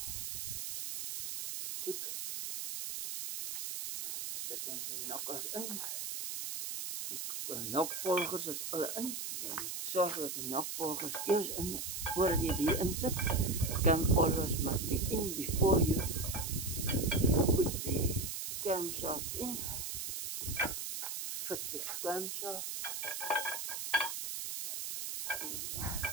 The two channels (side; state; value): right; noise; hiss, 4 dB below the sound